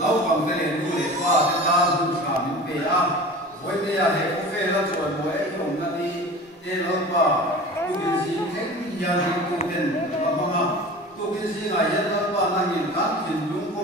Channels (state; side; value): normal; both; correlation 0.37